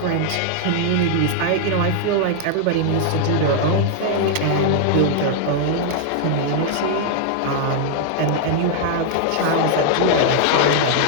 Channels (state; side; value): different; both; correlation 0.00